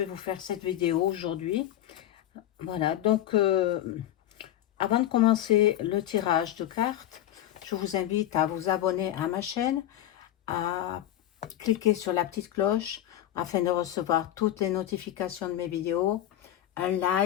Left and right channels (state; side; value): quieter; right; 12.5 dB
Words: vous faire cette vidéo aujourd'hui. Voilà, avant de commencer le tirage de cartes, je vous invite à vous abonner à ma chaîne, à cliquer sur la petite cloche afin de recevoir toutes les notifications de mes vidéos, un